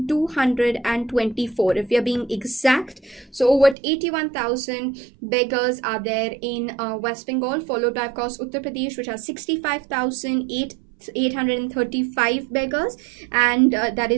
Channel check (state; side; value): drops out; left; at 3.8 s